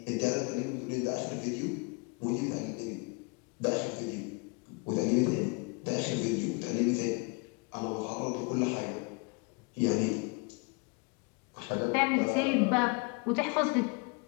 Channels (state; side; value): quieter; right; 32.1 dB